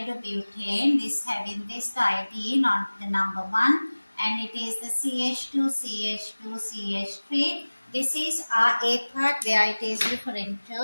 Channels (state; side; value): inverted; both; correlation -1.00